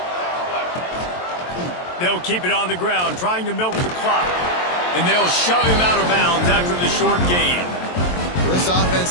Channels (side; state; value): right; late; 23 ms